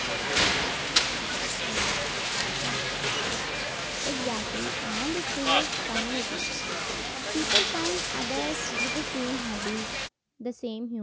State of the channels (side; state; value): both; identical; correlation 1.00